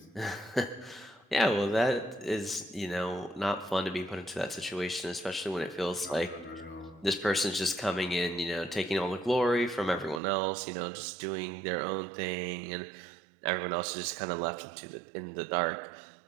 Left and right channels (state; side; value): drops out; left; at 10.2 s